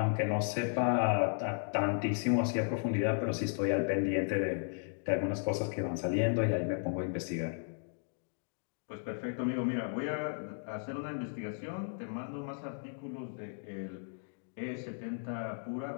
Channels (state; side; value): silent; right; digital silence